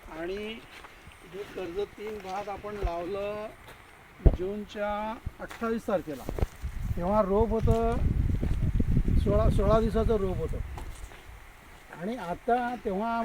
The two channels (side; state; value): both; identical; correlation 1.00